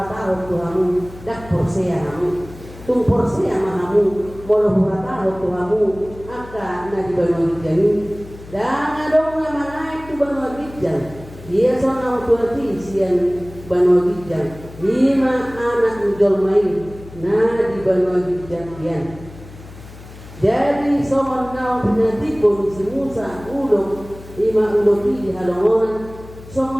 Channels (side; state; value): left; noise; hum, 17 dB below the sound